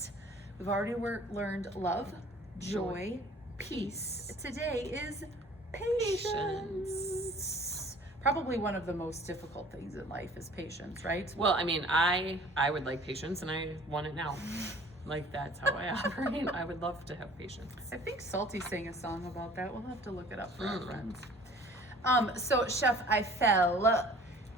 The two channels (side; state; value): both; normal; correlation 0.50